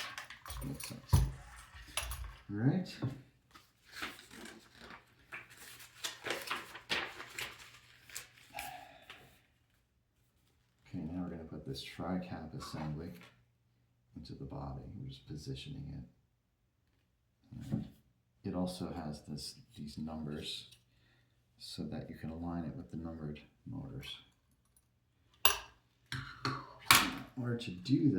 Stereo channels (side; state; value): both; identical; correlation 1.00